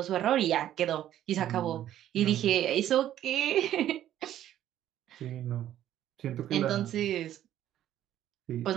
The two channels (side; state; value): left; quieter; 12.0 dB